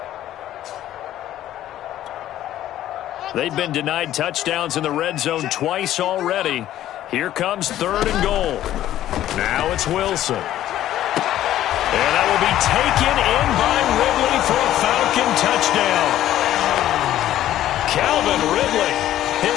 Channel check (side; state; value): right; quieter; 12.8 dB